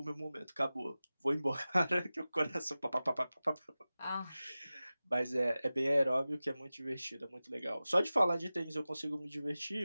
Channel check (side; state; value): both; inverted; correlation -0.96